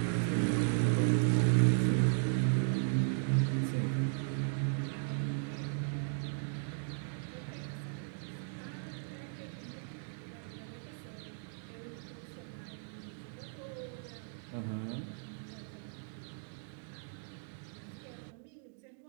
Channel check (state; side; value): silent; left; digital silence